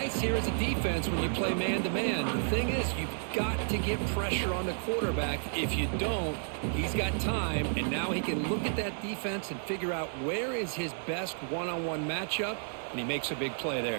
here as a defense when you play man-to-man. The thing is, you've got to get pressure on the quarterback. If you don't, he's got time, and now he can look at that defense and figure out where is his best one-on-one matchup, and he makes a big play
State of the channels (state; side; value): silent; left; digital silence